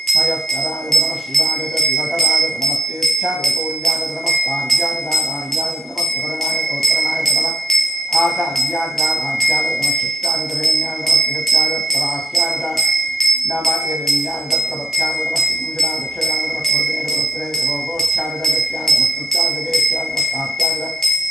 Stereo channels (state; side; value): normal; both; correlation 0.75